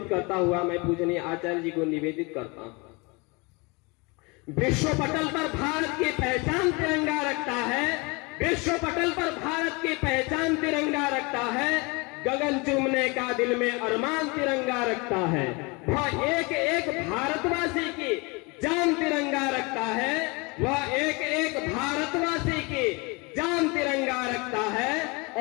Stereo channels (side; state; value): right; quieter; 28.1 dB